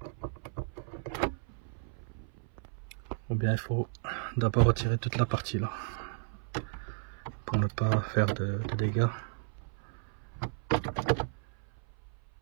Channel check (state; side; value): silent; left; 55 dB below the other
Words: Ou bien il faut d'abord retirer toute la partie là pour ne pas faire de dégâts.